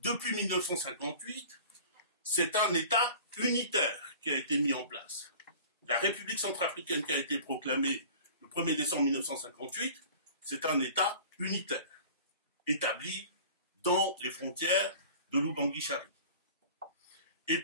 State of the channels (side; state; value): both; inverted; correlation -0.42